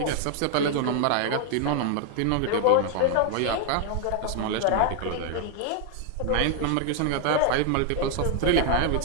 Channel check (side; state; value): both; different; correlation 0.00